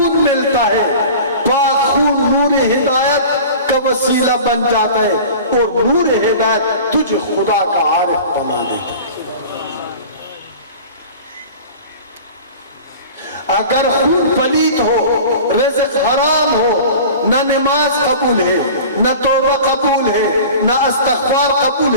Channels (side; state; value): both; inverted; correlation -0.39